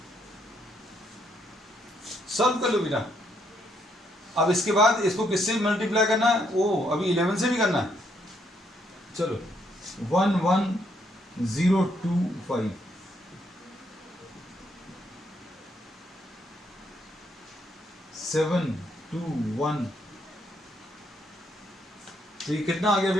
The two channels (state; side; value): normal; both; correlation 0.73